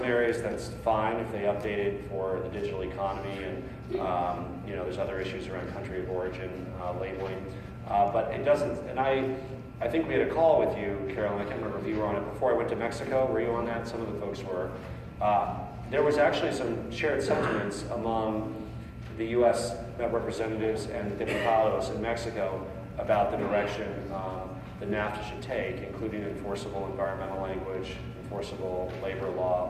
areas, that's fine if they update it for the digital economy, and there's other issues around country of origin labeling, but it doesn't. And I think we had a call with you, Carolyn. I can't remember if you were on it before I went to Mexico. Were you on that? Some of the folks were. There was actually some shared sentiments among the U.S. representatives and the diputados in Mexico about the direction that NAFTA should take, including enforceable environmental language, enforceable labor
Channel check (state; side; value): identical; both; correlation 1.00